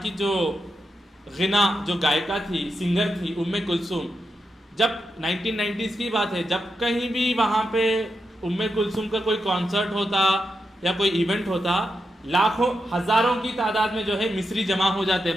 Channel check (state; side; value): normal; both; correlation 0.86